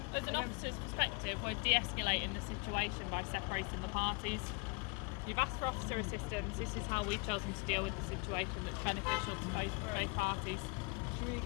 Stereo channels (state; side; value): quieter; right; 30.3 dB